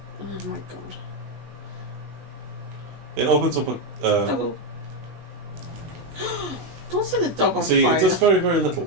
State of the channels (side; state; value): left; late; 19 ms